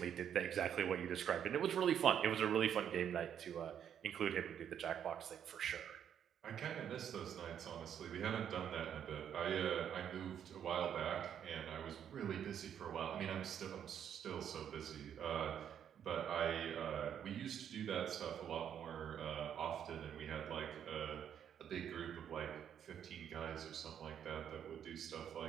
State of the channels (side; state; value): left; quieter; 9.0 dB